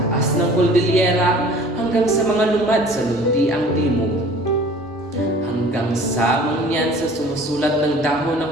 ng Cordillera hanggang sa mga lumad sa luntiang timog, hanggang sa mangyan sa sumusulat ng dahon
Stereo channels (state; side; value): normal; both; correlation 0.47